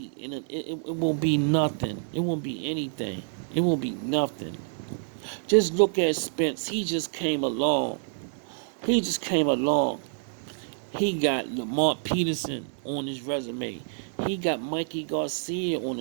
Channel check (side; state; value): left; silent; digital silence